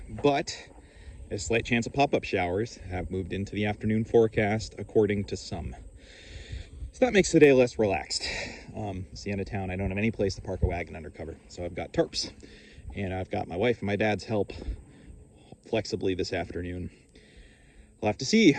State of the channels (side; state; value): both; identical; correlation 1.00